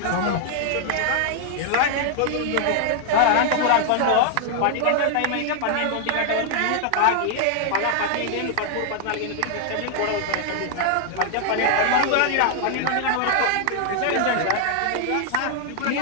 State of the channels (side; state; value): both; different; correlation 0.00